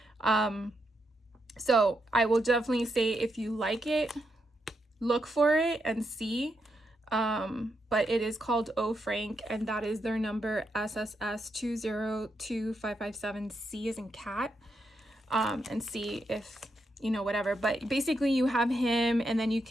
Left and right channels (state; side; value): normal; both; correlation 0.82